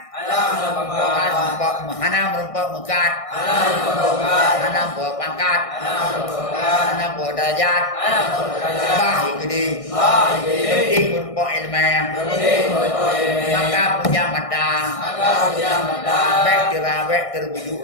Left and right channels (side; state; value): right; late; 1.6 ms